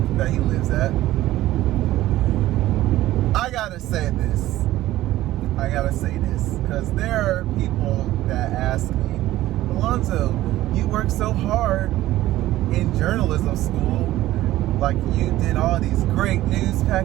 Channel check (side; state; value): left; quieter; 15.3 dB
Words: that he lives at. I gotta say this, because there are people that ask me, Alonzo, you work so hard in journalism school, like you did all these great news